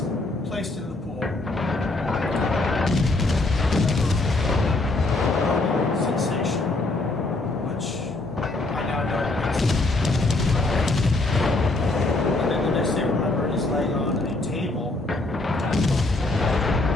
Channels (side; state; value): right; quieter; 3.0 dB